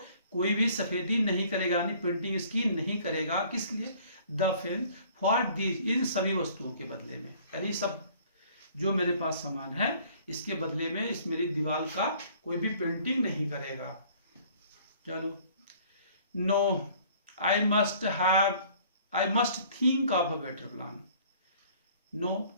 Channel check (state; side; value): inverted; both; correlation -0.54